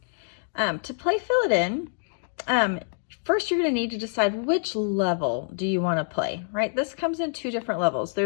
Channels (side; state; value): right; silent; digital silence